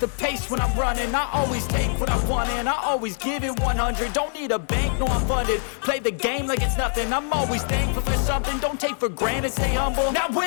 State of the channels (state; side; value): silent; right; 59 dB below the other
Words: the pace when I'm running. I always take what I want and I always give it 100. Don't need a bank, no I'm funded. Play the game like it's nothing. I'm always thankful for something. Don't take for granted, stay humble. Now